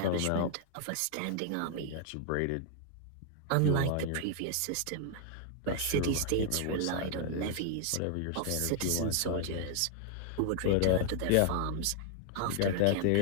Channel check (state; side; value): different; both; correlation 0.00